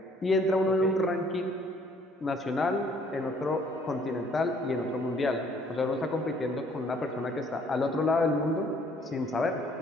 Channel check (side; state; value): both; normal; correlation 0.61